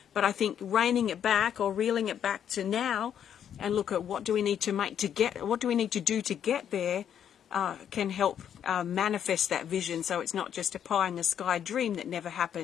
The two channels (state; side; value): quieter; right; 9.2 dB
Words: But I think reining it back or reeling it back to now and look at what do we need to do to get there can help manifest that vision, so it's not just a pie in the sky dream that never